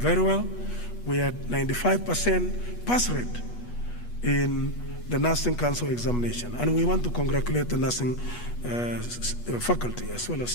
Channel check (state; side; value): late; right; 8.3 ms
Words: well. We had 95% pass rate in the Nursing Council examination. And we want to congratulate the nursing faculty as well as